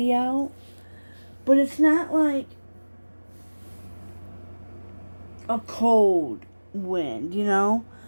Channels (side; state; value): both; inverted; correlation -1.00